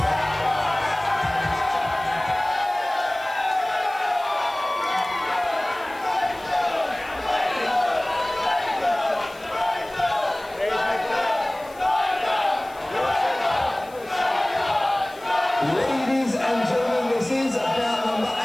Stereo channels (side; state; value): left; noise; hiss, 24 dB below the sound